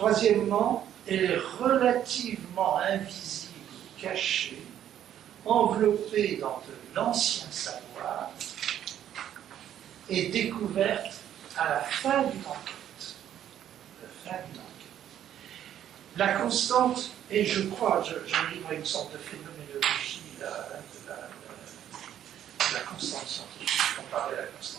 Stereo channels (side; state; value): left; quieter; 10.7 dB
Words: elle est relativement invisible, cachée, enveloppée dans de l'ancien savoir et découverte à la fin d'une enquête. La constante, et je crois, je livre une sorte de phénoménologie de la constante scientifique comparée à la